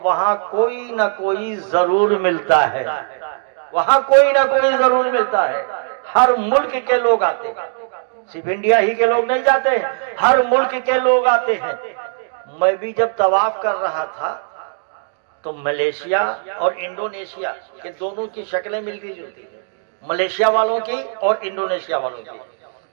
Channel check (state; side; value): silent; left; 67 dB below the other